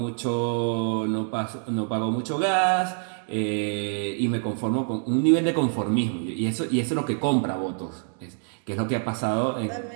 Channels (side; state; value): left; silent; 59 dB below the other